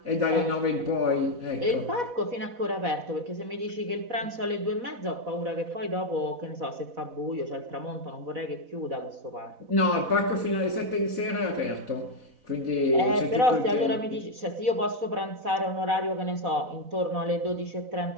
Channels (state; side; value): late; left; 4.1 ms